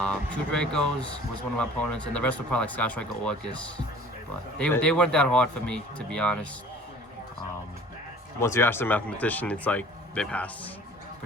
Two Dracos was one of my opponents, and the rest were probably like Sky Striker Orcust. But they weren't that hard for me, to be honest. Once you ask the mathematician, it's like they pass.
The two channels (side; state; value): both; normal; correlation 0.48